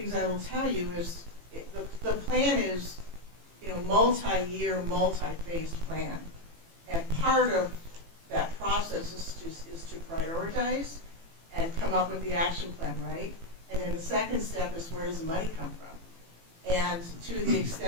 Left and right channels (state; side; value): late; left; 18 ms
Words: I will tell you is the plan is, multi-year, multi-phased plan. And part of that process is to prioritize and come up with the action plan, right? And then the second step is, where does the money come from? And to the